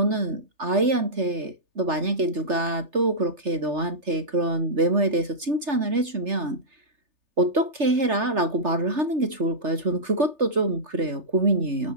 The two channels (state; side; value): late; left; 3.3 ms